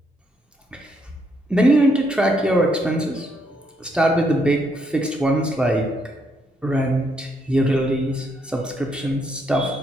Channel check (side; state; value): both; normal; correlation 0.75